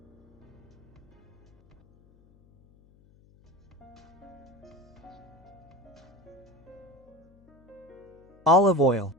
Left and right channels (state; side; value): noise; left; hum, 28 dB below the sound